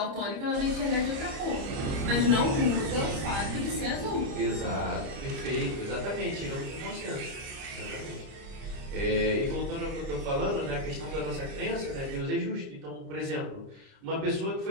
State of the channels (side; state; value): left; late; 30 ms